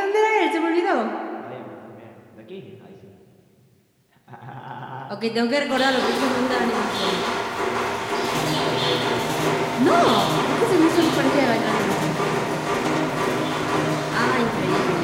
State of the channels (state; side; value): identical; both; correlation 1.00